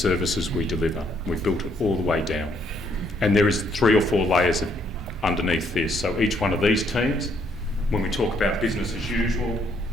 we deliver. We've built it all the way down. And there is 3 or 4 layers underneath this. So each one of these teams, when we talk about business as usual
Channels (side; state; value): both; normal; correlation 0.70